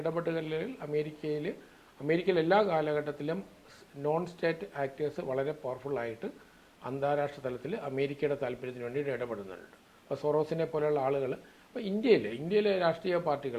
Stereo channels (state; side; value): identical; both; correlation 1.00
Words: അമേരിക്കയിൽ എല്ലാ കാലഘട്ടത്തിലും നോൺ സ്റ്റേറ്റ് ആക്ടേഴ്സ് വളരെ പവർഫുള്ളായിട്ട് അന്താരാഷ്ട്ര തലത്തിൽ അമേരിക്കയുടെ താല്പര്യത്തിന് വേണ്ടിയിട്ട് ഇടപെടുന്നുണ്ട്. അപ്പോൾ സൊറോസിനെ പോലെയുള്ള ആളുകൾ. അപ്പോൾ ഇന്ത്യയിലെ രാഷ്ട്രീയ